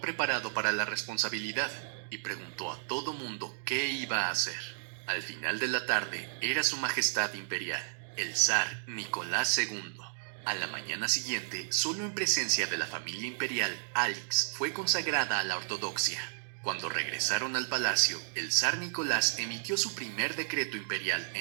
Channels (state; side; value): silent; left; digital silence